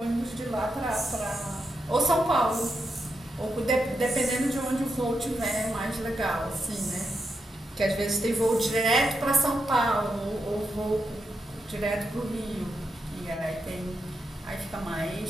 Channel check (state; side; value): normal; both; correlation 0.85